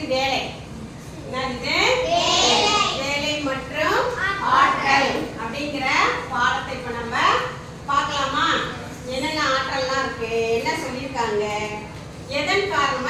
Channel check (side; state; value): both; identical; correlation 1.00